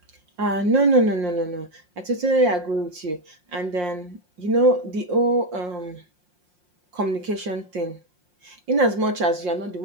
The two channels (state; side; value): late; left; 5.6 ms